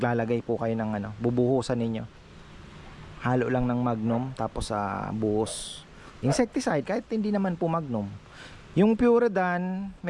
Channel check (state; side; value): identical; both; correlation 1.00